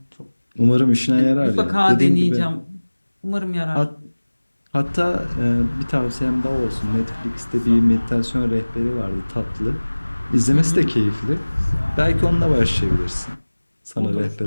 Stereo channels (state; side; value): inverted; both; correlation -1.00